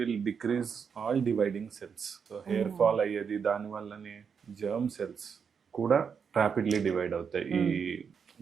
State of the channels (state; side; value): quieter; left; 6.5 dB